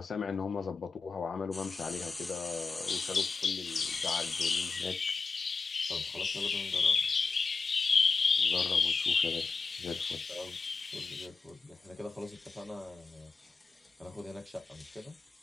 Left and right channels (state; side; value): quieter; right; 4.5 dB